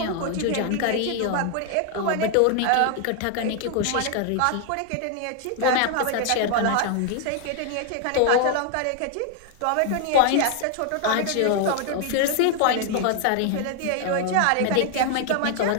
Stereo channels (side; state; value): both; different; correlation 0.00